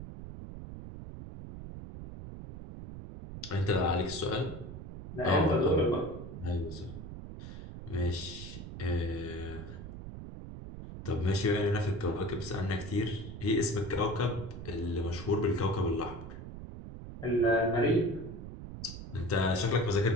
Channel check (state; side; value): noise; right; rumble, 10 dB below the sound